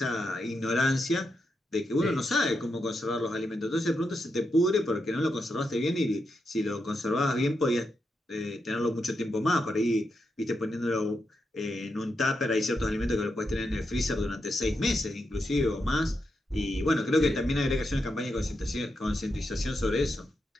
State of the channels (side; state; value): both; normal; correlation 0.85